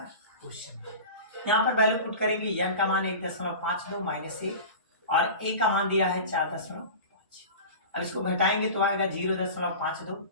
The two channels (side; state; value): both; inverted; correlation -0.34